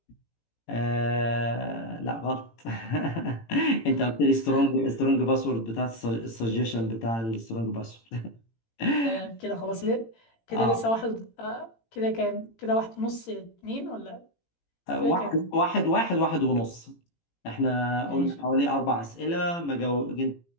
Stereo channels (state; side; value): late; right; 18 ms